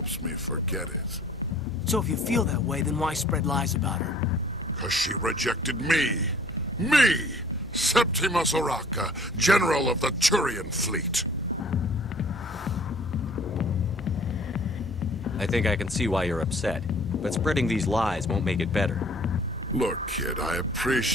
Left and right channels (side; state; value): both; normal; correlation 0.54